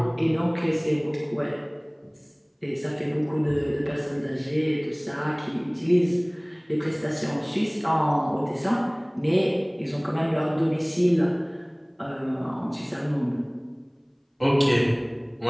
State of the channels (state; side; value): identical; both; correlation 1.00